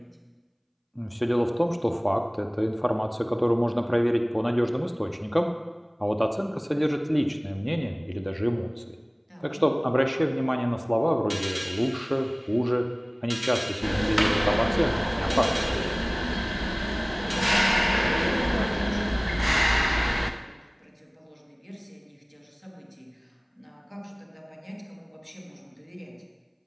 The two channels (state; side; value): identical; both; correlation 1.00